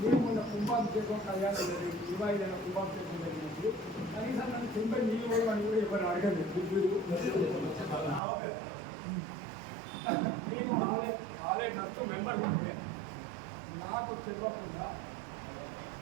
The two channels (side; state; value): left; drops out; at 8.2 s